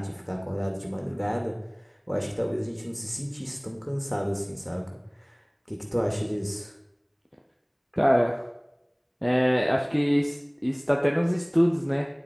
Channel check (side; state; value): both; identical; correlation 1.00